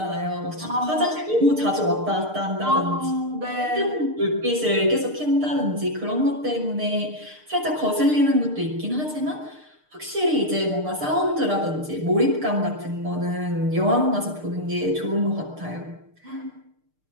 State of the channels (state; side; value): late; left; 6.6 ms